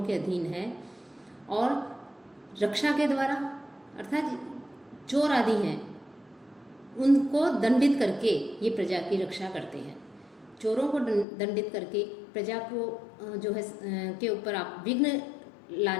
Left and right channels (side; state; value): right; drops out; at 11.2 s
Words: के अधीन है। और रक्षा के द्वारा अर्थात चोर आदि हैं उनको दंडित करके ये प्रजा की रक्षा करते हैं। चोरों को दंडित करके प्रजा को जो है के ऊपर आप विघ्न